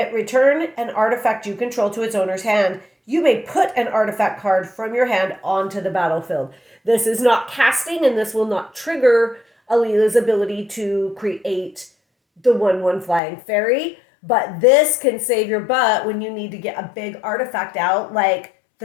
return an artifact you control to its owner's hand. You may put an artifact card from your hand onto the battlefield. This is not casting, and this will not trigger Alela's ability to create the 1/1 flying fairy. But this can save your butt when you need to get a big artifact out, like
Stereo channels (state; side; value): drops out; right; at 13.2 s